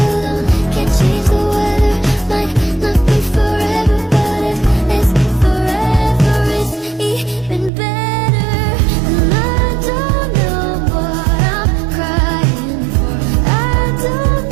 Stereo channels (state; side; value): drops out; left; at 7.7 s